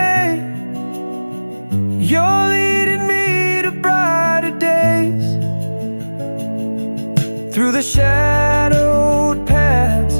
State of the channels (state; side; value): inverted; both; correlation -1.00